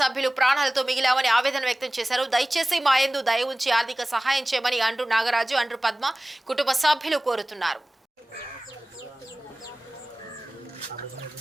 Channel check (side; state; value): both; normal; correlation 0.98